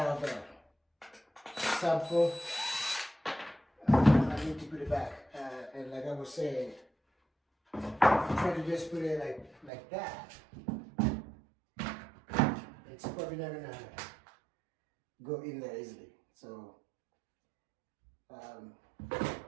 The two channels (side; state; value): left; drops out; at 9.7 s